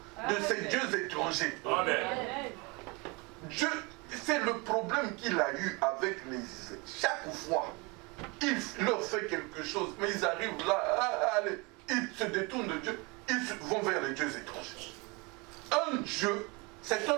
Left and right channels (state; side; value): quieter; left; 27.8 dB